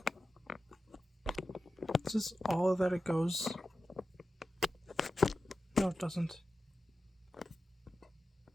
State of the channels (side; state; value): both; normal; correlation 0.93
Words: Is this all that it goes? No, it doesn't.